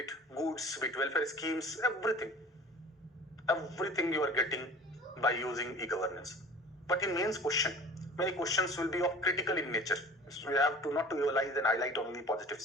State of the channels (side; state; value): both; normal; correlation 0.43